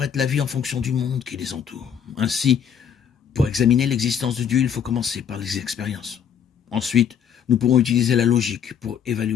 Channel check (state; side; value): quieter; right; 8.0 dB